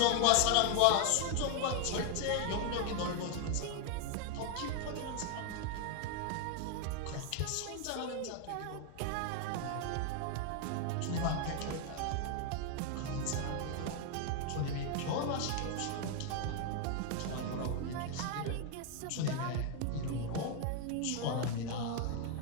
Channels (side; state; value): both; different; correlation 0.01